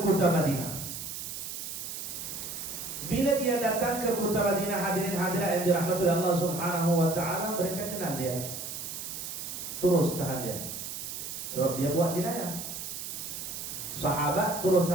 kota Madinah. Bila dia datang ke kota Madinah, hadirin hadirat yang dirahmati Allah Subhanahu wa taala, mereka kenal dia. Terus tahan dia. Sebab dia buat jinayah. Sahabat terus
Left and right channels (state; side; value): noise; right; hiss, 7 dB below the sound